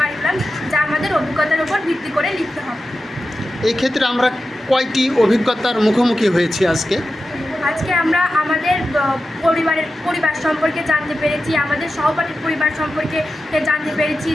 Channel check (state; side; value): normal; both; correlation 0.92